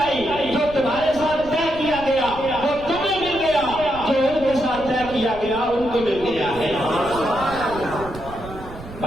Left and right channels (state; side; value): noise; right; rumble, 14 dB below the sound